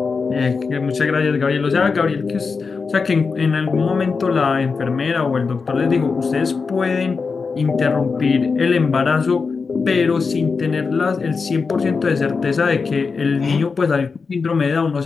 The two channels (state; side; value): quieter; right; 4.9 dB